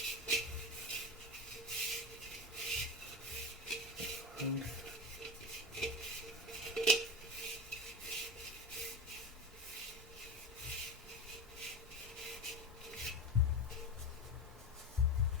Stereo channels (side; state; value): both; normal; correlation 0.22